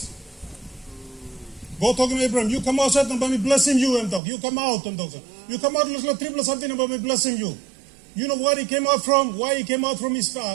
God talking to Abraham, you come outside and by me blessing you, and talk. You come out and talk. You come out like triple something about me blessing you. You know where he came out from? Why he came out from his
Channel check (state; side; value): drops out; left; at 4.2 s